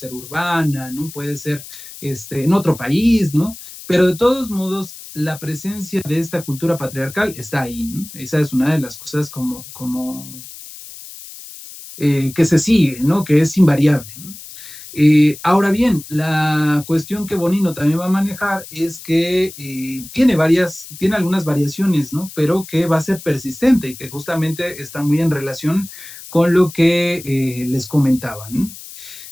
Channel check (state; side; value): noise; left; hiss, 15 dB below the sound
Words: urbana, ¿no? Puede ser en otro país, ¿no? Pero de todos modos, la presencia de esta cultura patriarcal está ahí, ¿no? Esa es una de las cosas como que se sigue, ¿no? Que es invariable, ¿no? Ahora bien, la cuestión que Bonino también va a manejar es que tiene algunas variaciones, ¿no? Pero que va a ser persistente y que justamente está muy en relación con lo que les comentaba, ¿no?